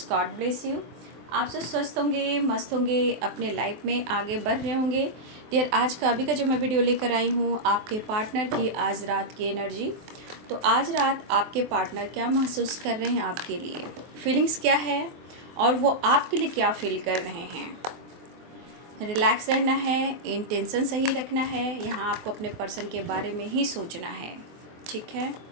God bless you. आप सब स्वस्थ होंगे, मस्त होंगे, अपने लाइफ में आगे बढ़ रहे होंगे। डियर, आज का अभी का जो मैं वीडियो लेकर आई हूँ, आपके पार्टनर की आज रात की एनर्जी। तो आज रात आपके पार्टनर क्या महसूस कर रहे हैं, आपके लिए फीलिंग्स क्या है और वो आपके लिए क्या फील कर रहे हैं। रिलैक्स रहना है, इंटेंशन सही रखना है, यहाँ आपको अपने पर्सन के बारे में ही सोचना है, ठीक है।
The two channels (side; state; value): left; late; 24 ms